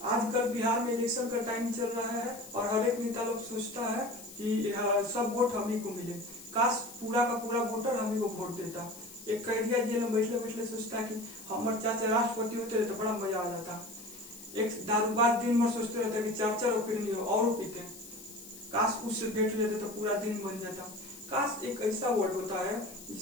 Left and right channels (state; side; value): noise; left; hiss, 16 dB below the sound